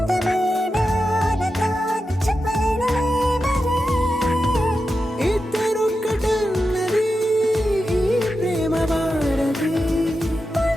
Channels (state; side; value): normal; both; correlation 0.90